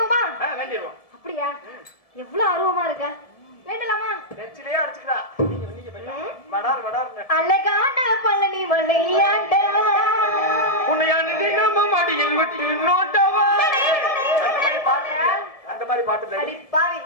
வேண்டிடுவோம். அப்படியா? எவ்வளவு ஆர்வமா இருக்க. வேண்டலாமா? நெச்சிலே அடிச்சுக்கிறா. நீங்க போய் வடார் வடார்னு. அழகான பழனி மலையாண்டா உன்னையான நம்ம மடியில் விட்டு நோட்டவா. அந்த மாதிரி பாட்டு அடி பாவி.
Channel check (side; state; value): right; late; 1.8 ms